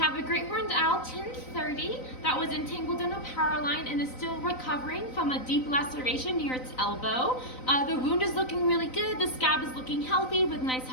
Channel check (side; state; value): right; late; 3.9 ms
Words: a Greyhondel 1030 that was entangled in a power line and is still recovering from a deep laceration near its elbow. The wound is looking really good. The scab is looking healthy with nice